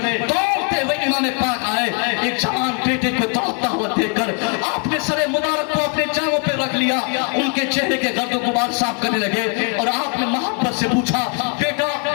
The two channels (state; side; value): quieter; right; 36.0 dB